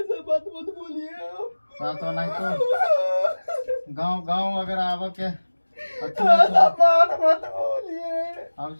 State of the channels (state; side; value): inverted; both; correlation -1.00